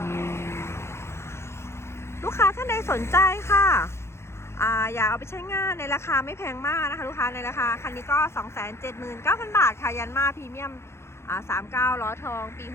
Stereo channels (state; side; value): late; right; 0.13 ms